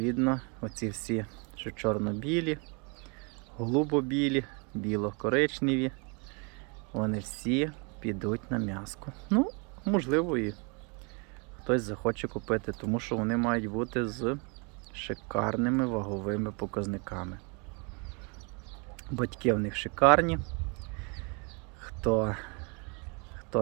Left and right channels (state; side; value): quieter; left; 33.4 dB